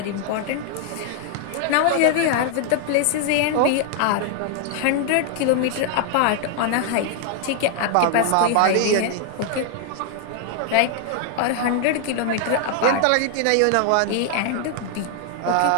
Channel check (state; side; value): different; both; correlation 0.00